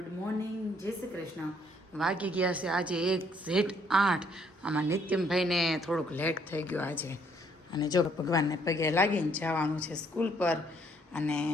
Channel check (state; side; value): normal; both; correlation 0.66